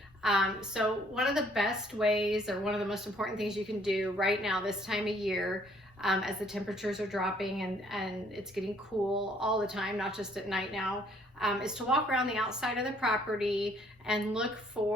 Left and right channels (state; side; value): normal; both; correlation 0.63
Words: So one of the best ways, or one of the most important things you can do right now this time of year, as the temperatures are dropping and it's getting cool all the time, not just at night now, is to walk around the outside of the property and look